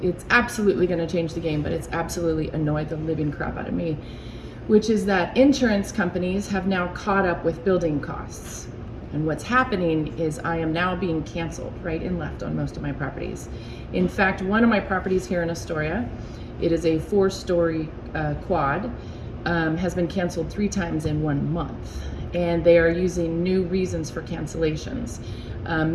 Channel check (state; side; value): identical; both; correlation 1.00